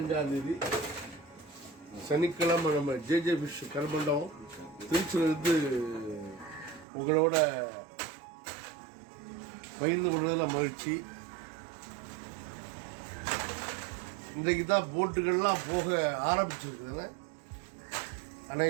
தேதி சனிக்கிழமை நம்ம ஜேஜே ஃபிஷ் கருமண்டபம் திருச்சியிலிருந்து உங்களோட பகிர்ந்து கொள்வதில் மகிழ்ச்சி. இன்றைக்கு தான் போட்டுகள்லாம் போக ஆரம்பிச்சிருக்குதுன்னு,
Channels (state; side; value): drops out; left; at 6.9 s